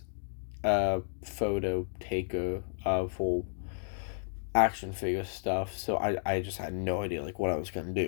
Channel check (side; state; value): right; silent; digital silence